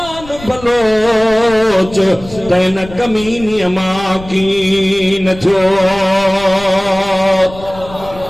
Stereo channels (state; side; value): noise; left; rumble, 16 dB below the sound